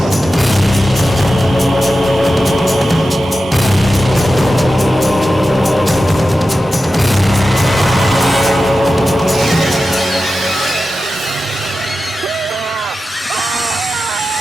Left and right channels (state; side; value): normal; both; correlation 0.93